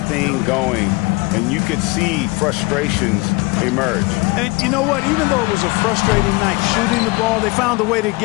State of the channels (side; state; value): right; quieter; 25.3 dB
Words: going. And you could see frustrations emerge. And you know what? Even though it was a frustrating night shooting the ball, they found a way to